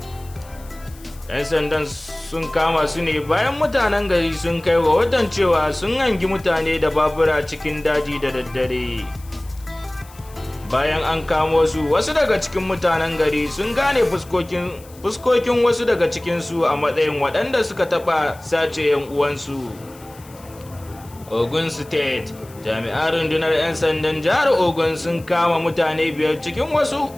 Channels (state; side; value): noise; left; hiss, 23 dB below the sound